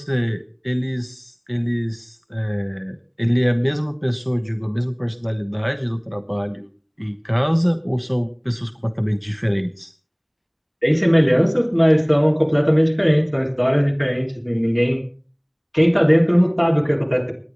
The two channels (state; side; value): identical; both; correlation 1.00